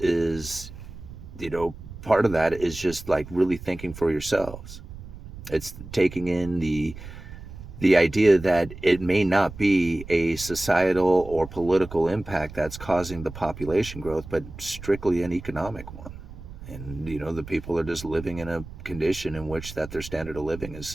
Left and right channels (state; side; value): noise; right; rumble, 14 dB below the sound